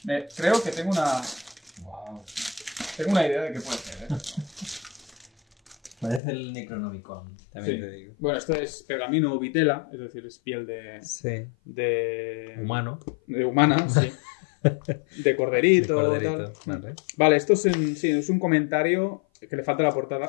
Creo que tengo una... Tengo una idea de qué puede ser, Parece el Necronomicon, también te digo. Bueno, esto es pergamino o vitela, es decir, es piel de humano. De humana, sí. De corderito. Tal. Vale, esto es un comentario que le falta la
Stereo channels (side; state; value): right; drops out; at 6.2 s